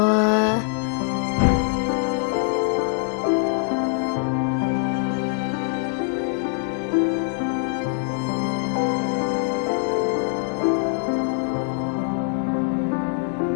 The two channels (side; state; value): right; silent; 57 dB below the other